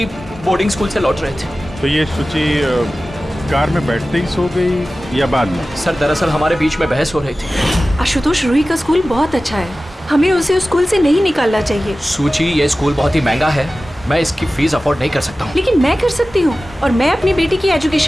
बोर्डिंग स्कूल से लौट रहे थे। तो ये सुची कार में बैठते ही सो गई या बाद में? सर, दरअसल हमारे बीच में बहस हो रही थी। आशुतोष, रूही का स्कूल बहुत अच्छा है, हमें उसे उस स्कूल से नहीं निकालना चाहिए। सुची, ये स्कूल बहुत ही महंगा है, मैं इसकी फीस अफोर्ड नहीं कर सकता हूँ। लेकिन मैं कर सकती हूँ, और मैं अपनी बेटी की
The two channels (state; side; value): normal; both; correlation 0.96